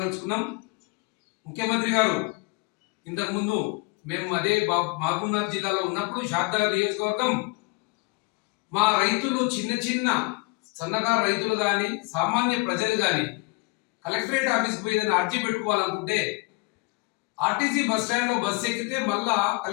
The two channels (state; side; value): quieter; right; 28.8 dB